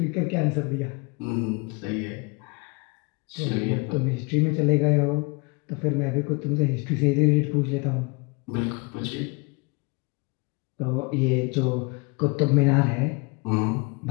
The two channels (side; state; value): right; quieter; 29.3 dB